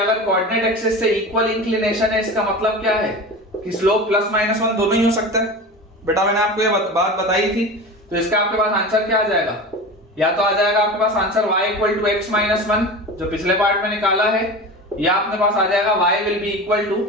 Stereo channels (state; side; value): normal; both; correlation 0.31